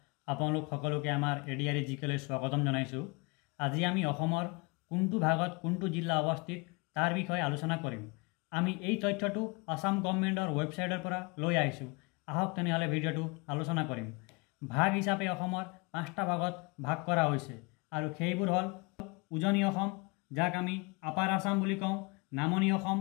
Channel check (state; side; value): quieter; right; 28.6 dB